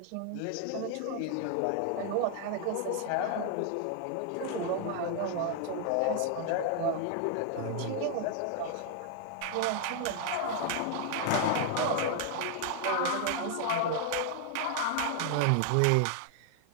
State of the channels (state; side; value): different; both; correlation 0.00